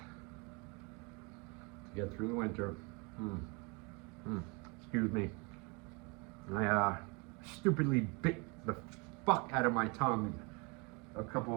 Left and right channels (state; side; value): quieter; left; 30.5 dB